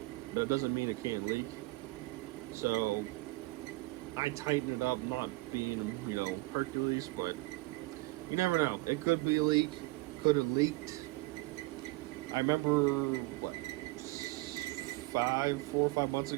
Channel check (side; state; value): left; quieter; 22.3 dB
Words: but it doesn't mean it can't leak. So I tightened it up, not being, Hercules, but you never know. It could be a leak, could have leaked. I remember, 4 or 5 months